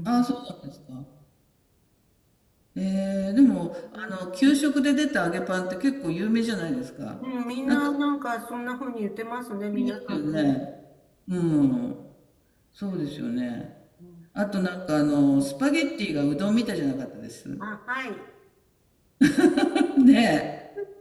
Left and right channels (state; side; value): identical; both; correlation 1.00